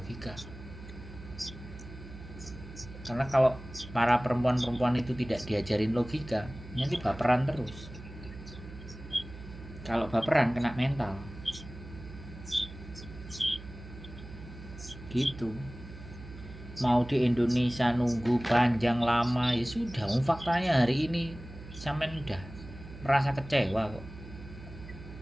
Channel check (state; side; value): noise; right; hum, 14 dB below the sound